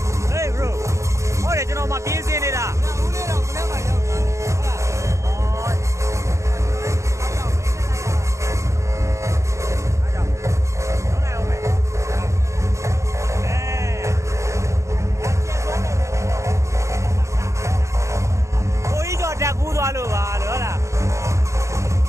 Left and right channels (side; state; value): left; late; 0.14 ms